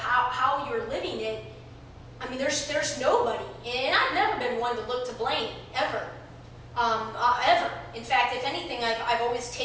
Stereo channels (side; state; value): both; identical; correlation 1.00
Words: you're living it. I mean, there's nobody, and I've never been one to look to blame, ever. Ever. In fact, if anything, I've always